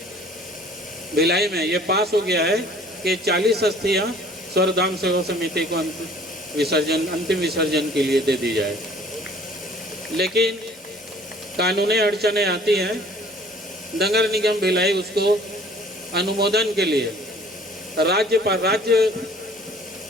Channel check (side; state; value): both; normal; correlation 0.53